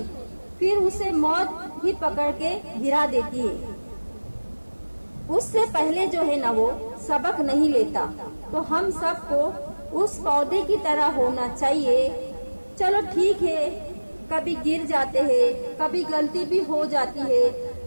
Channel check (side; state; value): both; inverted; correlation -1.00